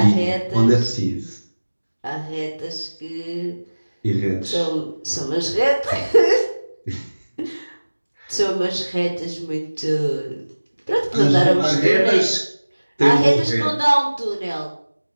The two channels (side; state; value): both; inverted; correlation -1.00